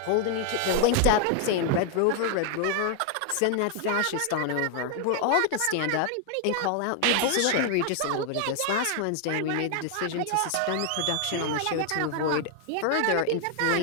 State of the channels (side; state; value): both; different; correlation 0.00